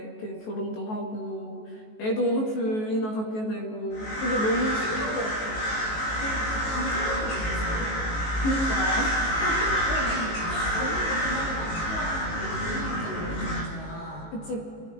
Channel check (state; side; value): late; right; 19 ms